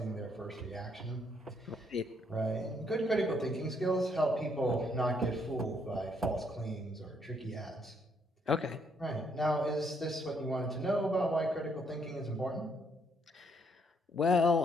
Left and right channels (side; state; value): both; normal; correlation 0.71